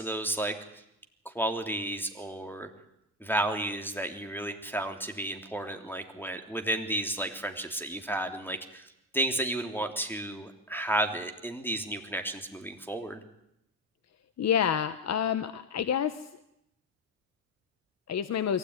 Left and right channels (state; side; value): normal; both; correlation 0.14